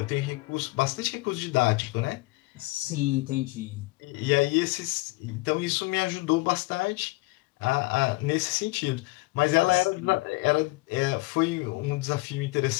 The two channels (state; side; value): quieter; right; 23.3 dB